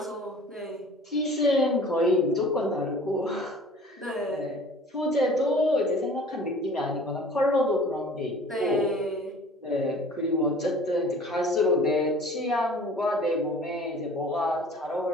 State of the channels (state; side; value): normal; both; correlation 0.47